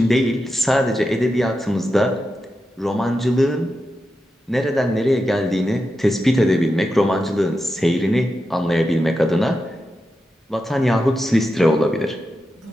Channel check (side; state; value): both; normal; correlation 0.89